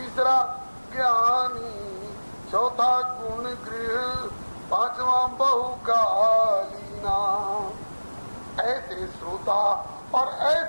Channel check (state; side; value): inverted; both; correlation -1.00